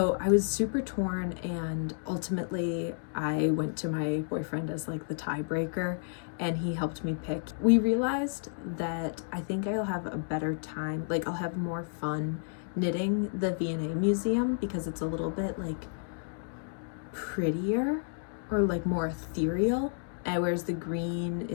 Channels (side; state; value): right; silent; digital silence